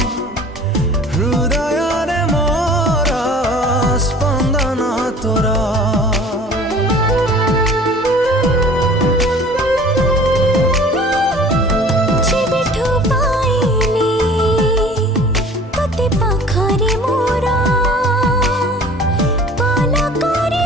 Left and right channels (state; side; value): normal; both; correlation 0.47